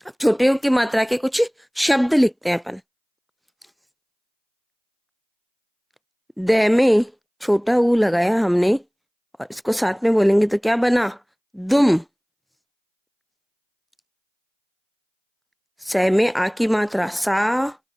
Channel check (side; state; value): both; identical; correlation 1.00